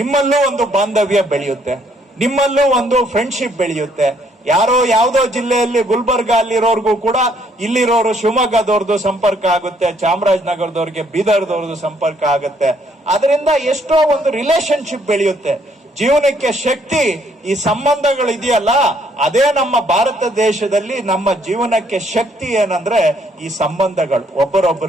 ಒಂದು ಬಾಂಧವ್ಯ ಬೆಳೆಯುತ್ತೆ, ನಿಮ್ಮಲ್ಲೂ ಒಂದು ಫ್ರೆಂಡ್ಶಿಪ್ ಬೆಳೆಯುತ್ತೆ. ಯಾರೋ ಯಾವ್ದೋ ಜಿಲ್ಲೆಯಲ್ಲಿ ಗುಲ್ಬರ್ಗ ಅಲ್ಲಿರೋರ್ಗೂ ಕೂಡ ಇಲ್ಲಿರೋರು ಶಿವಮೊಗ್ಗದವ್ರದ್ದು ಸಂಪರ್ಕ ಆಗುತ್ತೆ, ಚಾಮರಾಜನಗರದವ್ರಿಗೆ ಬೀದರ್ದವ್ರದ್ದು ಸಂಪರ್ಕ ಆಗುತ್ತೆ. ಅದರಿಂದ ಎಷ್ಟೋ ಒಂದು ರಿಲೇಶನ್ಶಿಪ್ ಬೆಳೆಯುತ್ತೆ. ಜೀವನಕ್ಕೆ ಶಕ್ತಿ ಈ ಸಂಬಂಧಗಳು ಇದೆಯಲ್ಲ, ಅದೇ ನಮ್ಮ ಭಾರತ ದೇಶದಲ್ಲಿ ನಮ್ಮ ಜೀವನಕ್ಕೆ ಶಕ್ತಿ ಏನಂದ್ರೆ ಈ ಸಂಬಂಧಗಳು,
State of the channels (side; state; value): both; normal; correlation 0.68